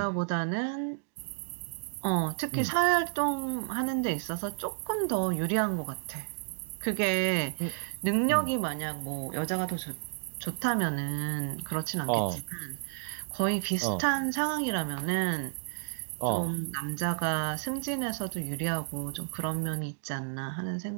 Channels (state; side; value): silent; left; digital silence